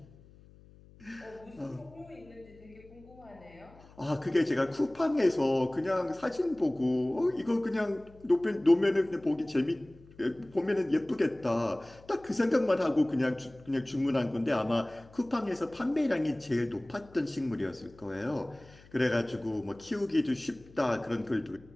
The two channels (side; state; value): left; noise; hum, 24 dB below the sound